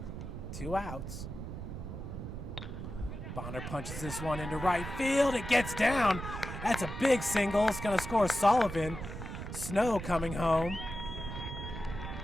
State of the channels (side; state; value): right; noise; rumble, 8 dB below the sound